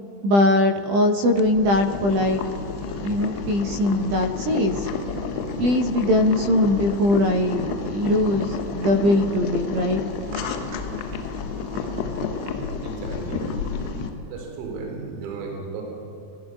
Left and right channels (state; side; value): late; left; 20 ms